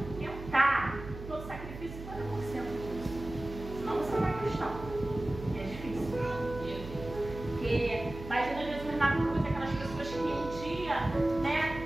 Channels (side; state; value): right; noise; hum, 11 dB below the sound